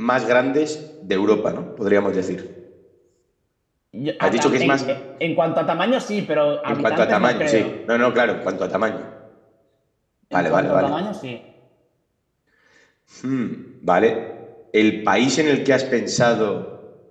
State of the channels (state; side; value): identical; both; correlation 1.00